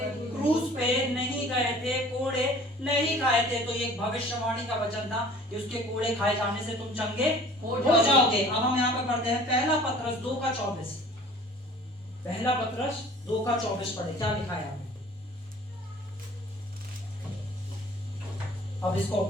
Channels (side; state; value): both; normal; correlation 0.48